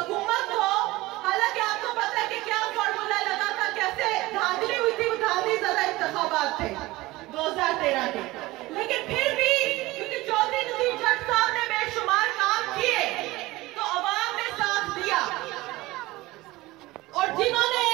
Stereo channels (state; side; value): quieter; left; 19.5 dB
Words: को। हालांकि आपको पता है कि क्या फॉर्मूला लगा था, कैसे धांधली हुई थी, धांधली ज़्यादा इंतखाबात थे 2013 के, लेकिन फिर भी क्योंकि चौधरी नजीर जट साहब ने बेशुमार काम किए तो अवाम ने साथ दिया। और जिन्होंने